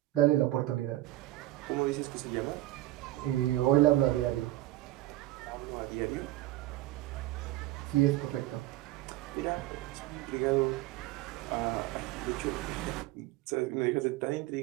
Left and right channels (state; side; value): quieter; left; 16.4 dB